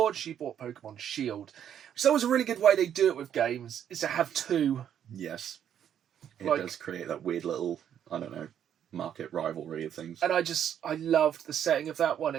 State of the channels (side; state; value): left; quieter; 9.5 dB